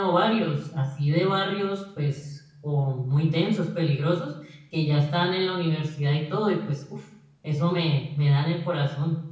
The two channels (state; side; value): identical; both; correlation 1.00